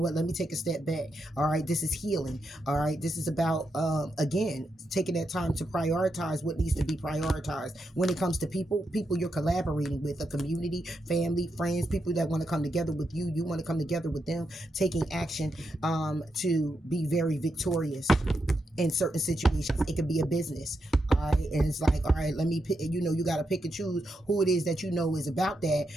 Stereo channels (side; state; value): both; normal; correlation 0.84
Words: Let me take a step back. All right. This is healing. All right. This is about, again, taking that time to prioritize what needs to be prioritized. When it comes to people you're collaborating with, a community, family, friends, people that want to come together with you. You want to come together with them, taking action, to be very victorious in certain situations. It could be a business. All right. And it's like, all right, let me pick, you got to pick and choose who it is that is about